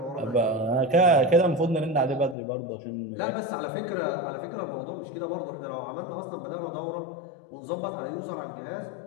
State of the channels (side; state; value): right; drops out; at 2.4 s